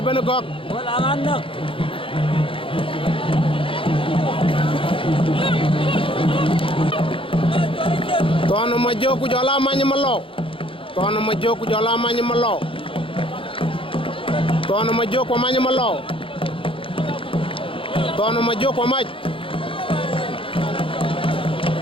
gok. Bolagan nak. Tono majoku jala manyamalo. Tono majoku jala manyamalo. Tono majoku manyamalo. Tono ma jo ko maj.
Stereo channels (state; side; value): late; right; 0.26 ms